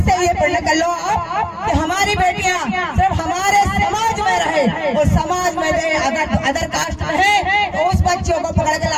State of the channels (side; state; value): both; identical; correlation 1.00